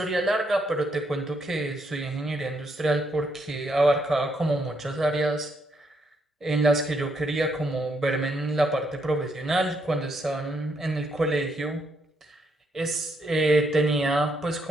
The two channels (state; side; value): normal; both; correlation 0.75